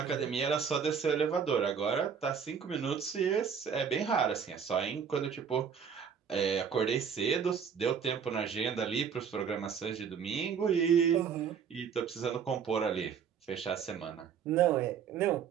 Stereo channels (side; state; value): left; quieter; 7.1 dB